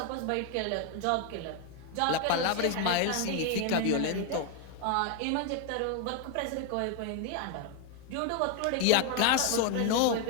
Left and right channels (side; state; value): both; different; correlation 0.01